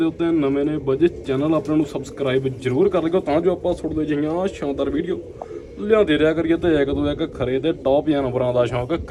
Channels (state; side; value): identical; both; correlation 1.00